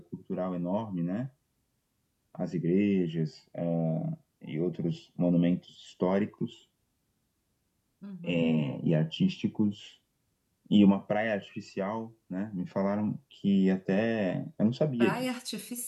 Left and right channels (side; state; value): both; identical; correlation 1.00